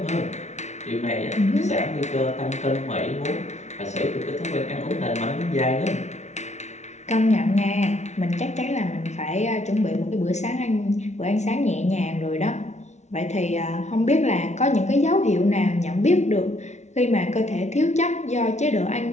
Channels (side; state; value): right; late; 0.32 ms